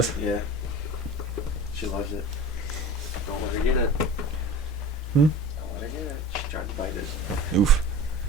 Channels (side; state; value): both; normal; correlation 0.37